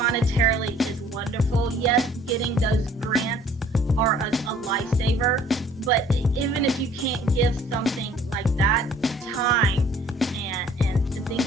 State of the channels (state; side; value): normal; both; correlation 0.55